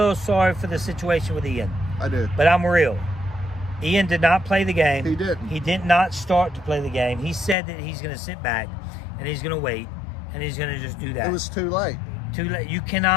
sorry for the situation with Ian. I do. But I'm real. Ian did not play the game. He didn't. He did not start to play the game. He said that he's going to sit back and he's going to wait and he's going to just do that. It was too late. Too late. You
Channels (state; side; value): drops out; right; at 7.6 s